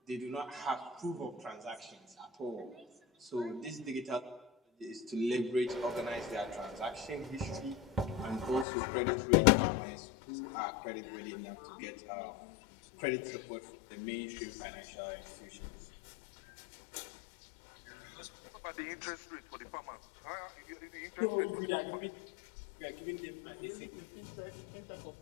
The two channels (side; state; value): right; drops out; at 8.7 s